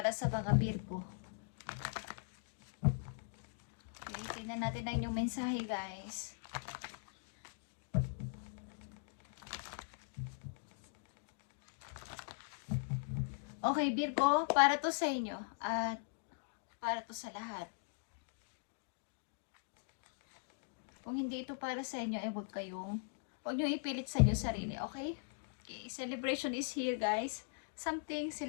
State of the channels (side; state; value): right; silent; digital silence